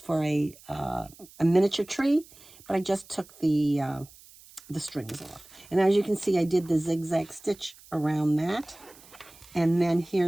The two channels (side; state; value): right; noise; hiss, 23 dB below the sound